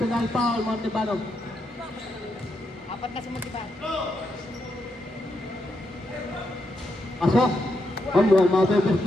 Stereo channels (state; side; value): normal; both; correlation 0.82